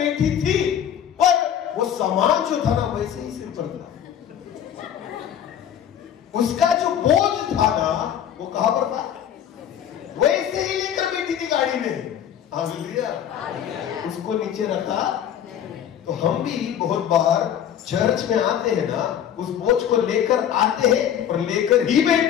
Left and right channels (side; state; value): right; quieter; 9.7 dB